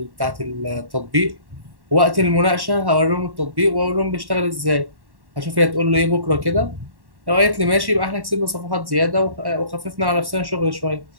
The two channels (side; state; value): left; late; 1.1 ms